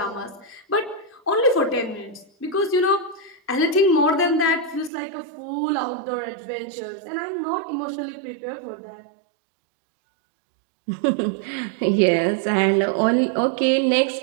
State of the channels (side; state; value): left; drops out; at 4.9 s